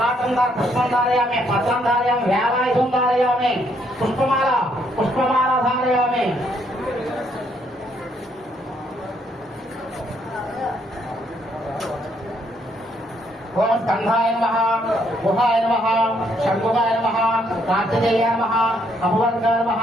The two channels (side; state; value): both; normal; correlation 0.71